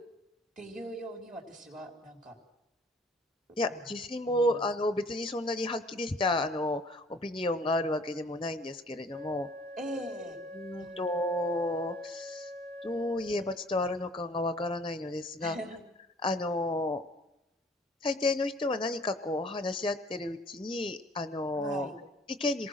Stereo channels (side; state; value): both; normal; correlation 0.55